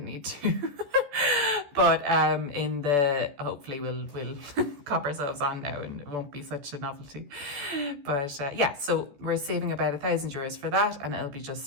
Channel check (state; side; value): late; left; 14 ms